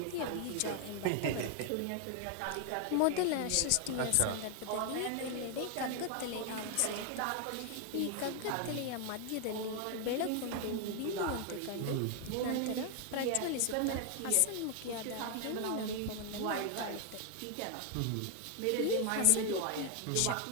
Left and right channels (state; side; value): different; both; correlation 0.00